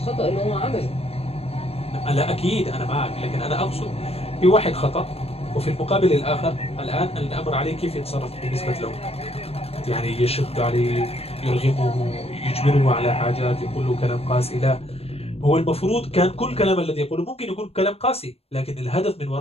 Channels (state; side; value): late; right; 0.29 ms